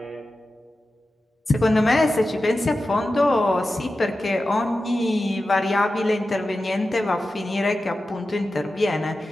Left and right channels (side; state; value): both; normal; correlation 0.93